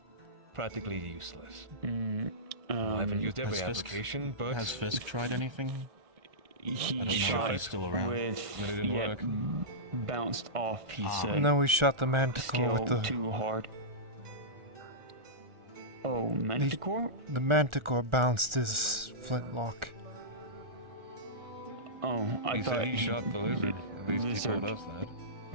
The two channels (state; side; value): late; left; 1.4 ms